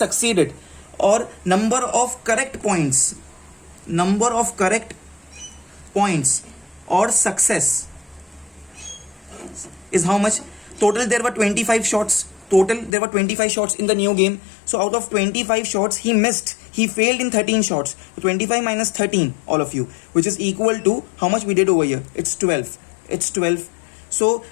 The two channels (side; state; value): right; drops out; at 12.9 s